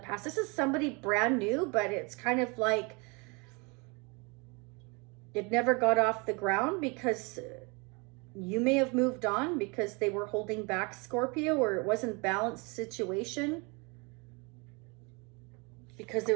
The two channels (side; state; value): left; quieter; 30.1 dB